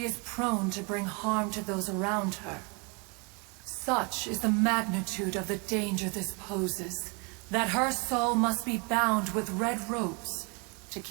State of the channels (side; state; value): left; quieter; 31.8 dB